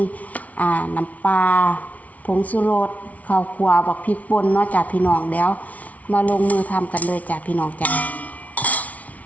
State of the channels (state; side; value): late; right; 0.070 ms